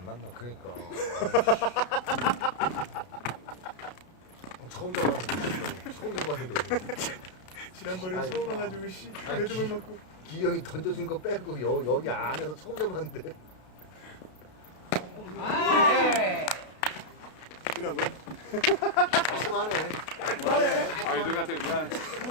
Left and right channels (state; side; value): late; right; 32 ms